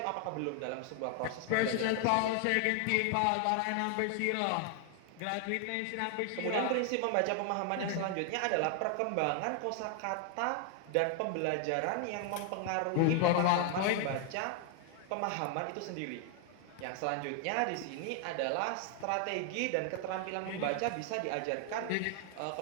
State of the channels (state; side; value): different; both; correlation 0.00